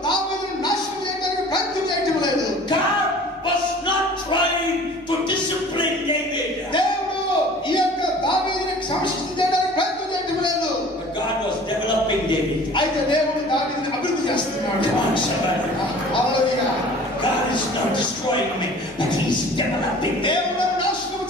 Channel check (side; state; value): both; normal; correlation 0.46